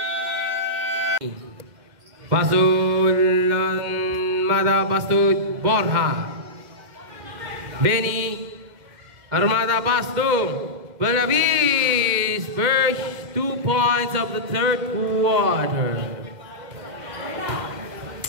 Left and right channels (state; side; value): late; left; 2.1 ms